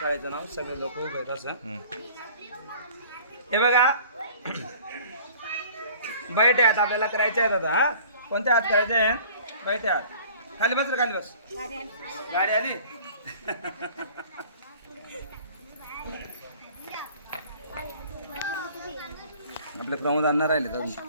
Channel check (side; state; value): both; inverted; correlation -0.48